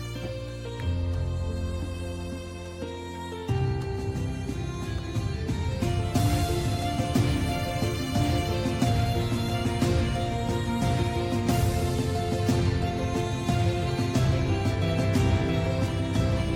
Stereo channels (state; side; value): identical; both; correlation 1.00